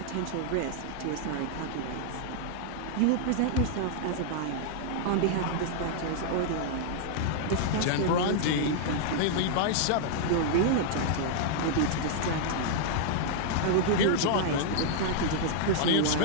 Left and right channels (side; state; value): both; different; correlation -0.01